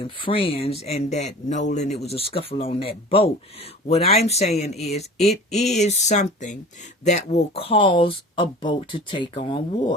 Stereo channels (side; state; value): both; normal; correlation 0.40